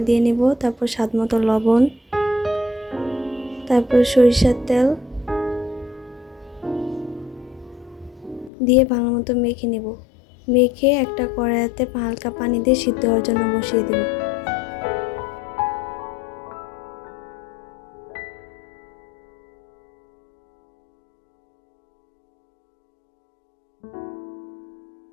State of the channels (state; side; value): drops out; right; at 8.5 s